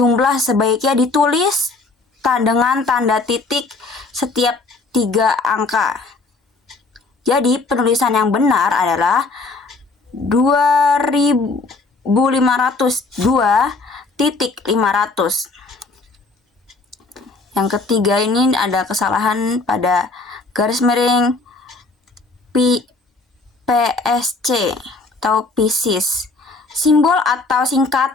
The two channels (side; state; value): right; quieter; 3.6 dB